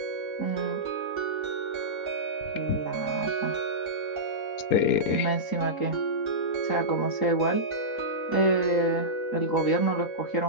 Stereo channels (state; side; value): late; right; 3.8 ms